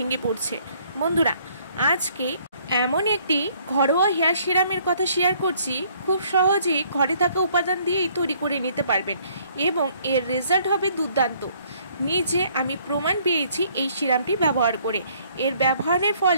পড়ছে। বন্ধুরা, আজকে এমন একটি ঘরোয়া হেয়ার সিরামের কথা শেয়ার করছি, খুব সহজেই ঘরে থাকা উপাদান দিয়েই তৈরি করে নিতে পারবেন এবং এর রেজাল্ট হবে দুর্দান্ত। নিজে আমি প্রমাণ পেয়েছি এই সিরামটি ব্যবহার করে। এর ব্যবহারের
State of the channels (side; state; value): both; inverted; correlation -0.62